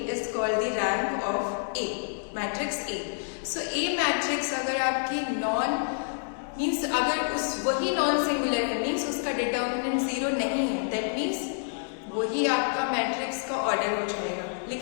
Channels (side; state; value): right; silent; digital silence